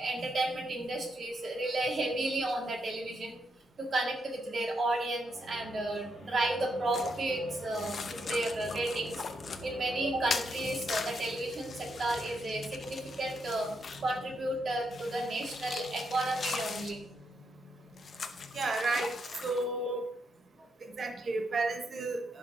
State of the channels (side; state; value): both; normal; correlation 0.80